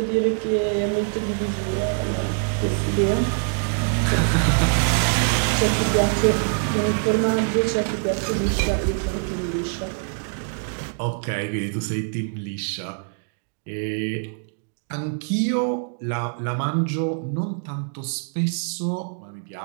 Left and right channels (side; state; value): left; silent; 62 dB below the other